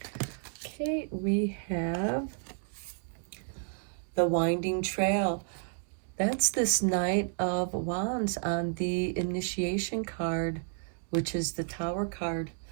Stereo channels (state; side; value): silent; left; 57 dB below the other